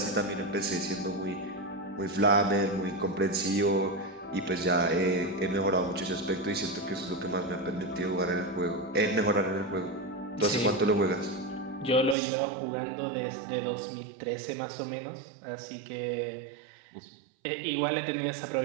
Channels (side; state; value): left; drops out; at 12.2 s